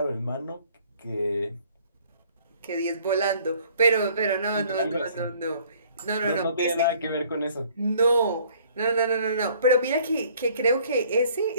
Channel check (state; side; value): inverted; both; correlation -0.57